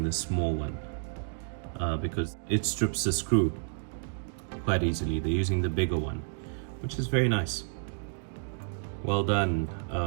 the small one. Because it strips the screw quite easily. They're using the bigger one, which is very nice. Well done,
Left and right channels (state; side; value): silent; left; digital silence